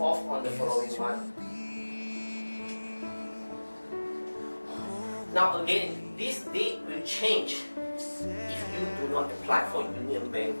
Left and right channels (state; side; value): inverted; both; correlation -1.00